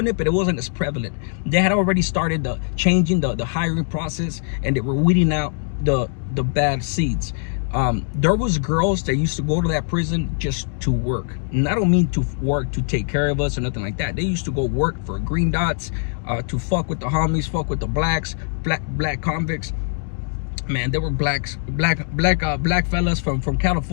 it, but it wasn't as prevalent. They had already started changing the hiring process, and they were weeding out the bad seeds. There was girls that used to go to that prison just to work. And I don't mean to work to take care of us or nothing like that. They used to go work for green dots, to fuck with the homies, fuck with the black convicts. Man, there were black fellas from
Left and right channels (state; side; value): silent; right; digital silence